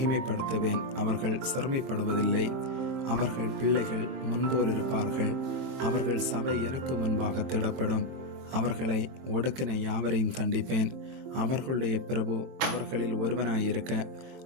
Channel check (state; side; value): late; left; 22 ms